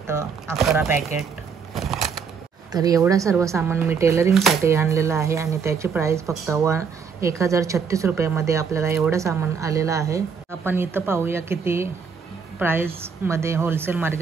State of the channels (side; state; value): left; quieter; 6.1 dB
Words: 11 पॅकेट. तर एवढं सर्व सामान मी टेलरिंगसाठी आणलेलं आहे आणि त्याची प्राईस फक्त 1036 रुपयामध्ये आपल्याला एवढं सामान आलेलं आहे. आपण इथं पाहूया किती प्राईसमध्ये होलसेल